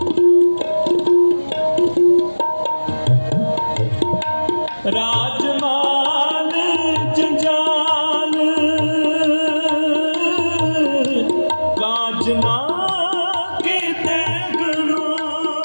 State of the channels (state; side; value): inverted; both; correlation -1.00